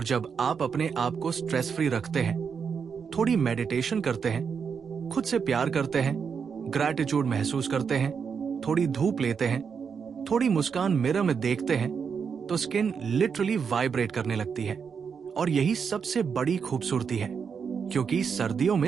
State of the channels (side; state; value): left; quieter; 6.4 dB